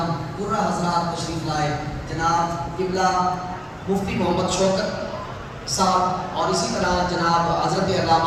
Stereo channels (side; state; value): both; identical; correlation 1.00